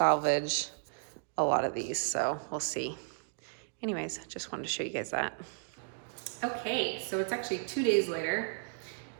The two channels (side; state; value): left; silent; digital silence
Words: a lot of these, so we'll see. Anyways, just wanted to show you guys that. Okay, so it's actually 2 days later,